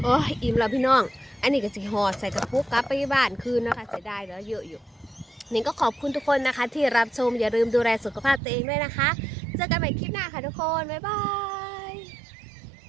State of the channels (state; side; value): drops out; left; at 8.4 s